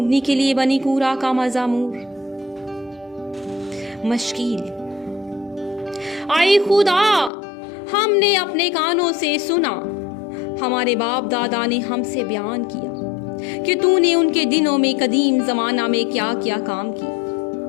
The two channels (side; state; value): right; drops out; at 7.3 s